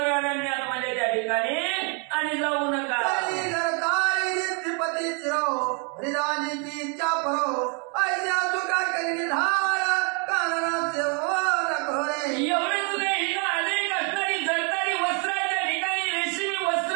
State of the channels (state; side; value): quieter; left; 36.3 dB